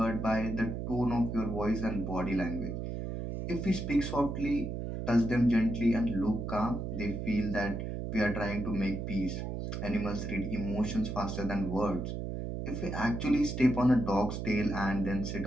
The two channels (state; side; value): noise; right; hum, 4 dB below the sound